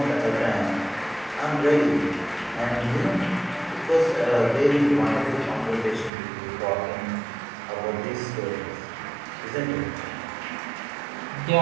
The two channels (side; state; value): left; drops out; at 6.1 s